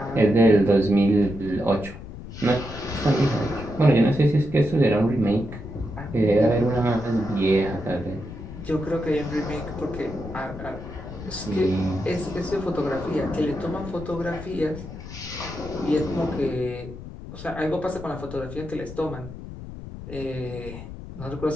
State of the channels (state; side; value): noise; left; rumble, 12 dB below the sound